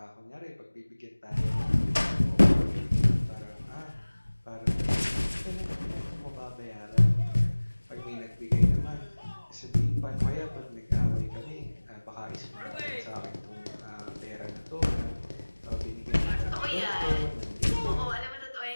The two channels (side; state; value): both; inverted; correlation -1.00